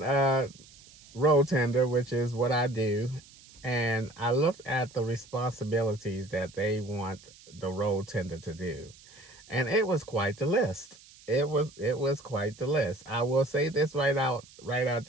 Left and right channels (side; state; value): right; noise; hiss, 23 dB below the sound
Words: road tender, which is what I do. And I looked at the responsibilities that they want the road tender to do. And it was quite the list. It was quite the list. I will say this right out